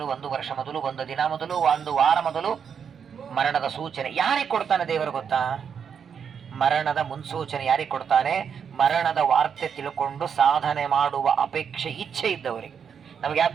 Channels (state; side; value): quieter; left; 7.2 dB